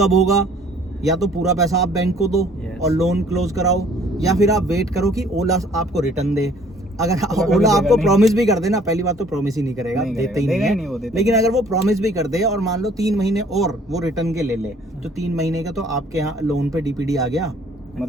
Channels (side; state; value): both; normal; correlation 0.57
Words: होगा? या तो पूरा पैसा आप बैंक को दो Yes. और लोन क्लोज कराओ, या फिर आप वेट करो कि ओला आपको रिटर्न दे। अगर कभी ओला देगा आपको नहीं। प्रॉमिस भी कर दे ना, पहली बात तो प्रॉमिस ही नहीं करेगा, नहीं देते ही करेगा, नहीं देगा है। ही नहीं वो, देता लेकिन अगर वो प्रॉमिस भी कर दे और मान लो 3 महीने और वो रिटर्न के ले ले, तो 3 महीने का तो आपके यहाँ लोन पे डीपीडी आ गया,